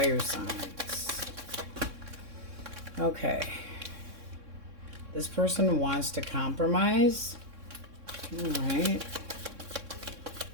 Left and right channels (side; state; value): left; late; 3.6 ms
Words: signs? Okay. This person wants to compromise. All right.